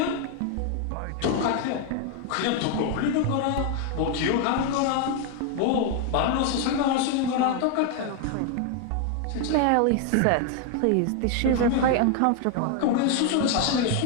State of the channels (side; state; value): both; different; correlation 0.00